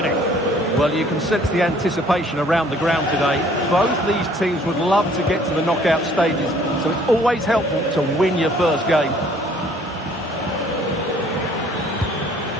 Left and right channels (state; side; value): normal; both; correlation 0.58